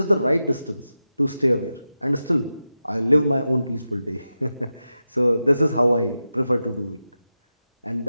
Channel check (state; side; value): inverted; both; correlation -0.91